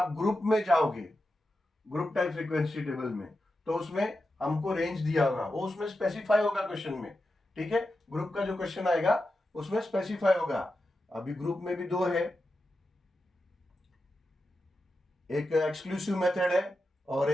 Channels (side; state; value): both; normal; correlation 0.90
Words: ग्रुप में जाओगे, ग्रुप टाइप फ्रीक्वेंसी टेबल में, तो उसमें हमको रेंज दिया होगा, वो उसमें स्पेसिफाई होगा क्वेश्चन में. ठीक है, ग्रुप का जो क्वेश्चन आएगा उसमें स्पेसिफाई होगा. अभी ग्रुप में भी 2 है, एक एक्सक्लूसिव मेथड है और